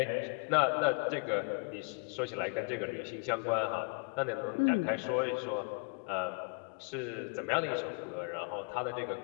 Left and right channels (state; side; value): quieter; right; 37.2 dB